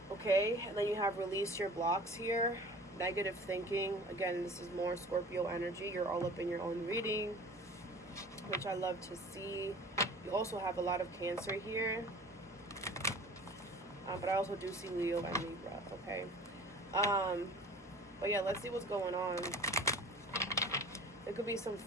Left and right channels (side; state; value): both; normal; correlation 0.43